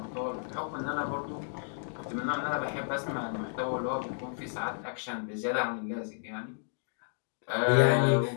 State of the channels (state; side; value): silent; right; digital silence